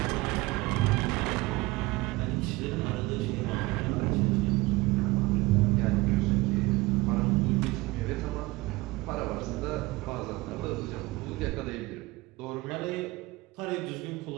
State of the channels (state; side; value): quieter; left; 21.2 dB